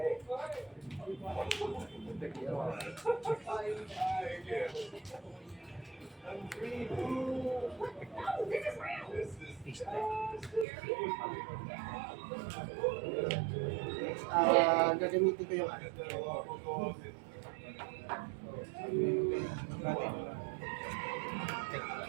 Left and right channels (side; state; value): left; drops out; at 10.7 s